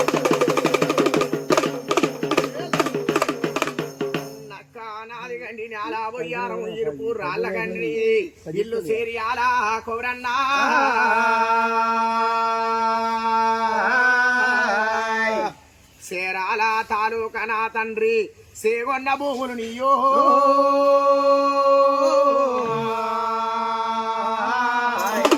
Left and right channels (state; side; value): identical; both; correlation 1.00